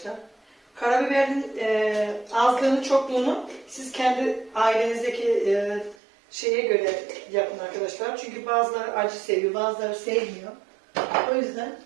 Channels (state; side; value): drops out; left; at 6.0 s